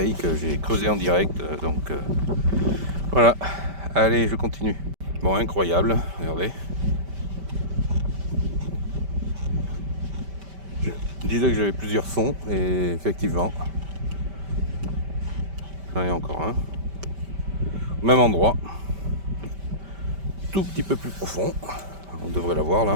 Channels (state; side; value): late; left; 5.1 ms